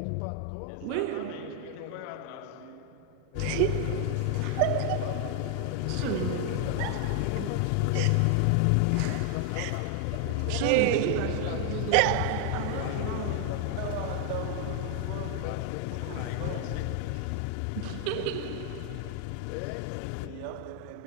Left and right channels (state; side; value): different; both; correlation 0.00